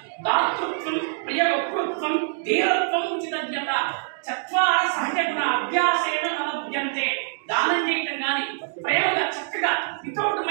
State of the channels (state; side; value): silent; left; digital silence